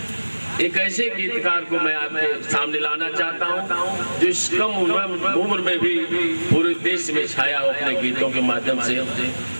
एक ऐसे गीतकार को मैं आपके सामने लाना चाहता हूँ जो इस कम उम्र में भी पूरे देश में छाया हो, अपने गीतों के माध्यम से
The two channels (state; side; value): inverted; both; correlation -1.00